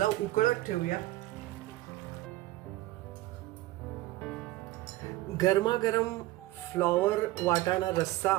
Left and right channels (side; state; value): left; quieter; 17.4 dB